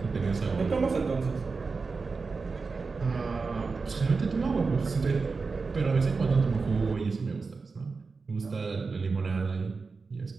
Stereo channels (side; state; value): left; quieter; 4.4 dB